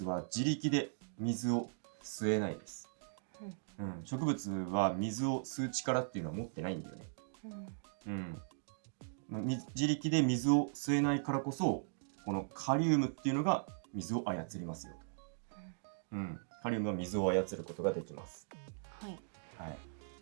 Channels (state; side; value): silent; left; digital silence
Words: は自力で水を吸えないです。植物は水を吸う力っていうのは持ってないんだよね。自力で水を吸えないからこそ、このカリウムっていうのが水を操りますよと。カリウムは水を操ることができます。